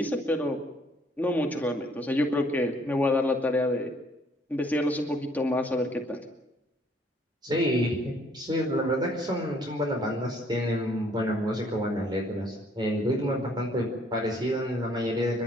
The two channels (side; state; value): both; normal; correlation 0.63